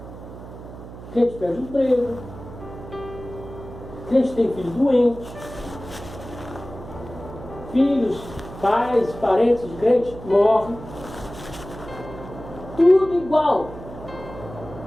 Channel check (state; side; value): noise; right; hum, 14 dB below the sound